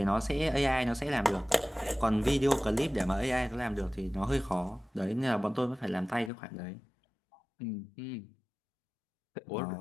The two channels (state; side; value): drops out; right; at 6.3 s